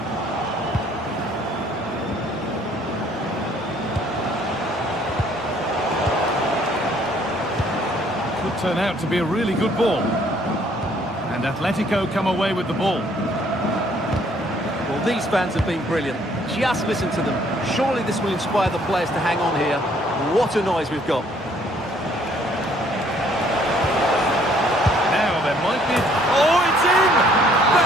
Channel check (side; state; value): both; normal; correlation 0.62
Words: Could turn out to be a really good ball. And Atletico come away with the ball. Well, these fans have been brilliant. Just listen to them. Surely this will inspire the players to hang on here. What a noise we've got. Now there might be... Oh, it's in!